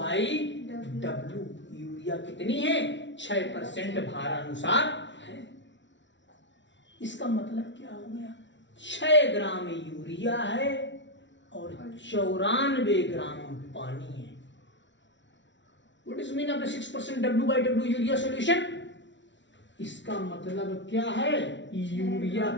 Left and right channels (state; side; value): late; right; 0.53 ms